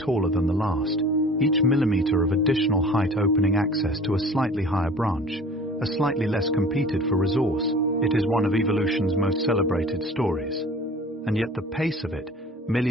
than the last, each millimeter of additional height opening access to a slightly higher branch, a slightly less competed for resource. It is one of evolution's most celebrated stories. And yet the pace of it,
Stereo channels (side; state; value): both; normal; correlation 0.44